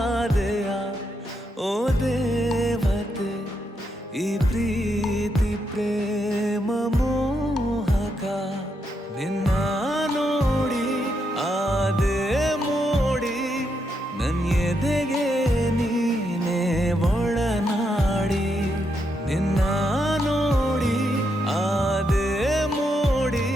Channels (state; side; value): normal; both; correlation 0.81